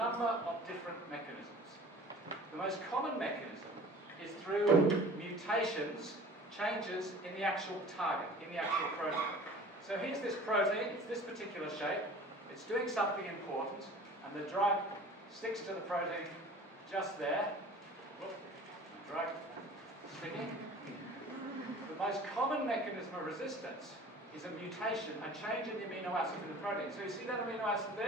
of different mechanisms. The most common mechanism is through mutations, changes in the actual target, in the actual protein. So here's this protein, it's this particular shape, it's doing something important, and the drug sticks to the protein just there. Whoop, the drug sticking. The most common mechanism of resistance is a mutation, a change in the amino acid in the protein. So you see that amino acid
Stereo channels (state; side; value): normal; both; correlation 0.44